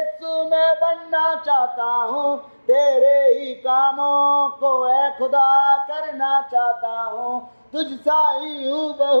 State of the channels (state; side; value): inverted; both; correlation -1.00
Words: मैं बनना चाहता हूँ, तेरे ही कामों को ऐ खुदा करना चाहता हूँ। तुझ सा ही